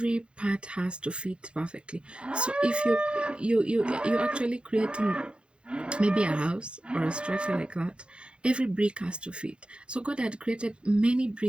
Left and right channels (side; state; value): left; late; 0.056 ms